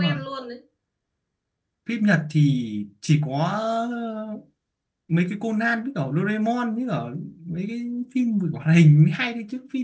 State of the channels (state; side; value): identical; both; correlation 1.00